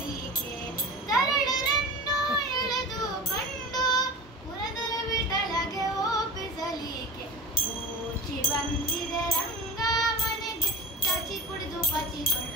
ತರಳರನ್ನು ಎಳೆದುಕೊಂಡು ಪುರಂದರ ವಿಠಲಗೆ ಒಪ್ಪಿಸಲಿಕ್ಕೆ ಊಚಿ ಬಂದಿದೆ ರಂಗ ಮನೆಗೆ ಚಾಚಿ ಕುಡಿದು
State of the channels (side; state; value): both; normal; correlation 0.33